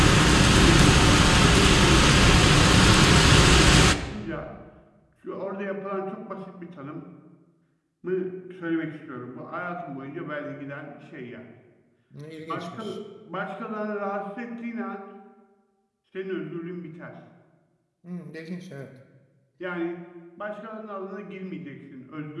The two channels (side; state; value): both; identical; correlation 1.00